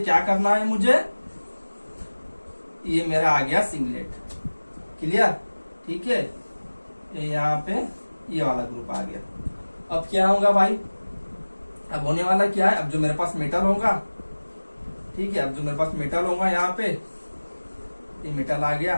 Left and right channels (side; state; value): both; inverted; correlation -1.00